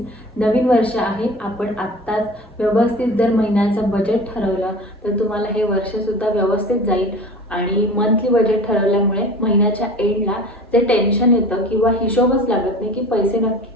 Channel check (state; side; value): normal; both; correlation 0.38